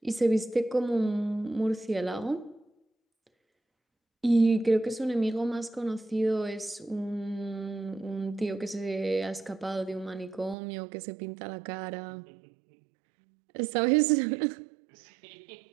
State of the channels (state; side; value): drops out; left; at 10.6 s